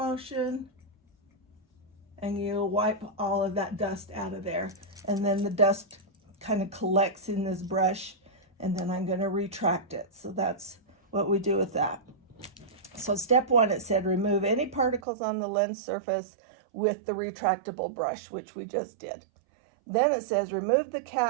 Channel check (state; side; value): drops out; left; at 15.1 s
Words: and you wipe all of that dust out of there. And then the dust kind of collects in this brush, and then I'm going to retract it. So that's what we do with that. So step 1, it said remove any particles on the lens surface with the retractable brush, which we just did. Then it says remove the